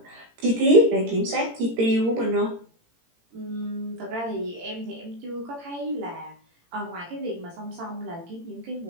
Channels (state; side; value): late; left; 18 ms